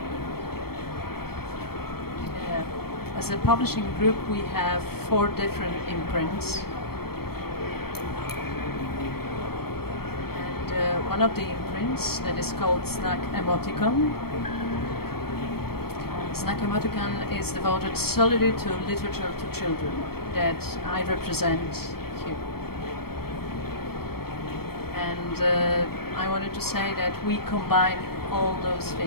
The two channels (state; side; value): late; right; 0.95 ms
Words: As a publishing group we have 4 different imprints. One of the imprints that is called Snack Emoticon. Snack Emoticon is devoted solely to literature to children that I represent here. And I wanted to say that we combine all those